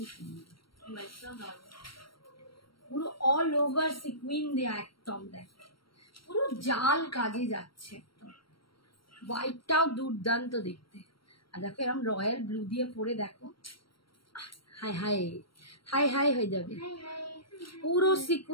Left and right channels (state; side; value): late; right; 0.74 ms